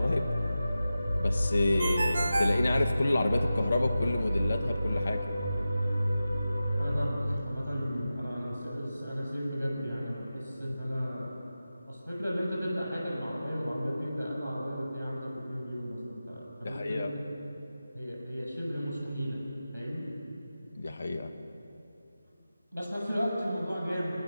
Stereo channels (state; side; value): inverted; both; correlation -0.93